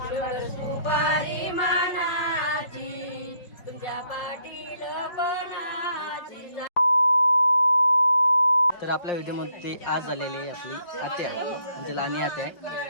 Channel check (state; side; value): late; right; 5.4 ms